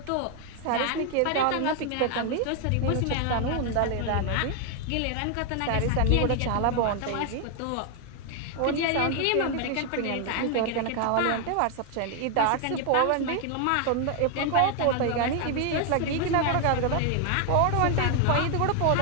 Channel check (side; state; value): both; different; correlation 0.01